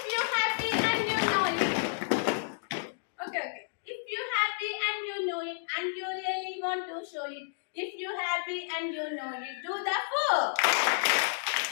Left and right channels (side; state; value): right; silent; digital silence